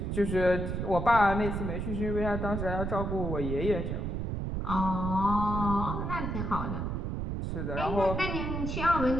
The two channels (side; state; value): right; noise; rumble, 2 dB below the sound